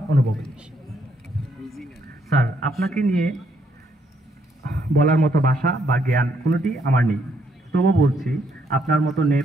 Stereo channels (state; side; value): normal; both; correlation 0.72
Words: অনুভব। স্যার, আপনাকে নিয়ে বলার মতো ভাষা বা জ্ঞান কোনোটি আমার নেই, তবু বলছি আপনার মতো